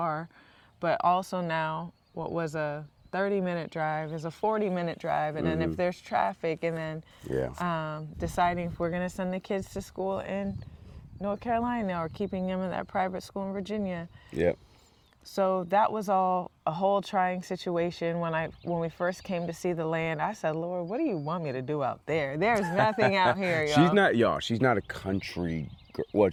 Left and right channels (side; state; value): both; identical; correlation 1.00